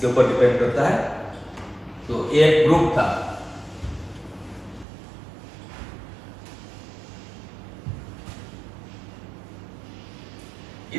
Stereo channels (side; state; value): left; drops out; at 4.9 s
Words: ऊपर डिपेंड करता है। तो एक ग्रुप था,